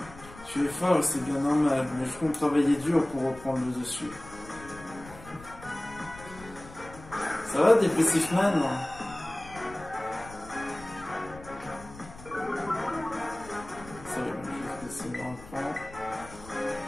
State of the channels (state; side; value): noise; left; rumble, 17 dB below the sound